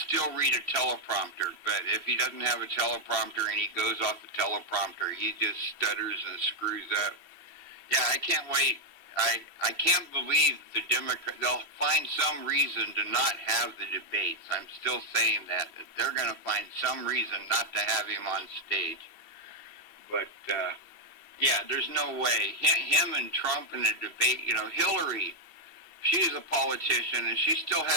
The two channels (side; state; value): left; late; 2.7 ms